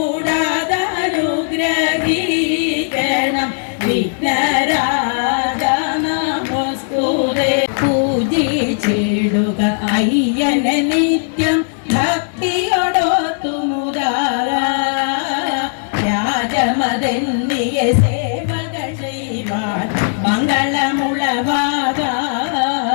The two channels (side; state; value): right; silent; digital silence